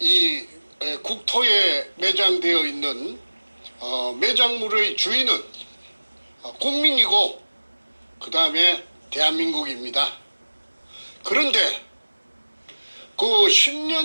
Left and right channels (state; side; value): inverted; both; correlation -1.00